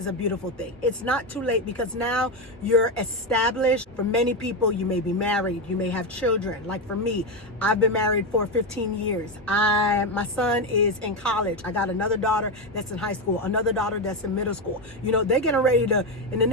a beautiful thing. It's not too late because now you're established. For many people, you may be married, you may have children. Like for me, I've been married for 15 years. My son is in college. I got another daughter that's in high school, another daughter that's in middle school. You know, they're getting ready to, in the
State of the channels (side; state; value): both; normal; correlation 0.11